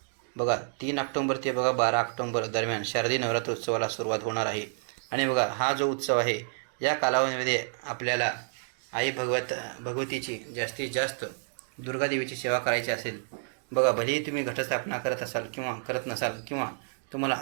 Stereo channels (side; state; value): left; silent; digital silence